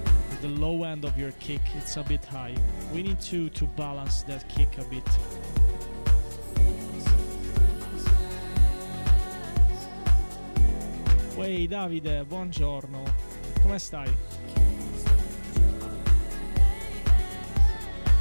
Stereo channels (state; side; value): inverted; both; correlation -1.00